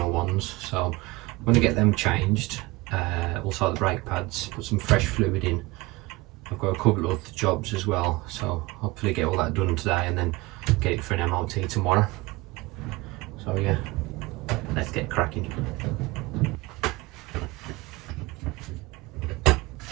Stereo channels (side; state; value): left; quieter; 21.7 dB